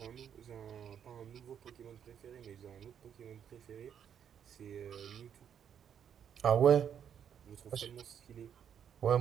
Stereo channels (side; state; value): left; quieter; 8.5 dB